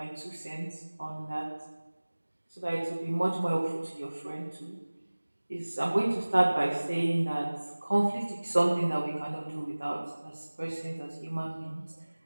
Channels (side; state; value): both; inverted; correlation -1.00